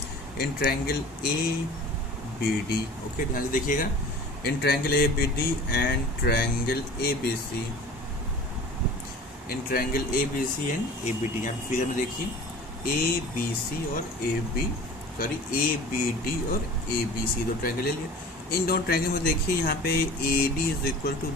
इन ट्रायंगल ABD, ओके ध्यान से देखिएगा, in triangle ABD and triangle ABC, in triangle ABC and ABD। यहाँ फिगर में देखिए ABC और ABD और ABC दो ट्रायंगल ले लिए। इन दोनों ट्रायंगल में देखिए यहाँ पे AD is equal to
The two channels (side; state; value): both; normal; correlation 0.41